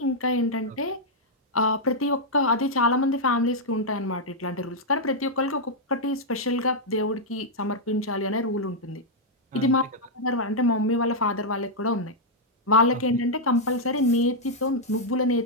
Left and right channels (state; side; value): normal; both; correlation -0.05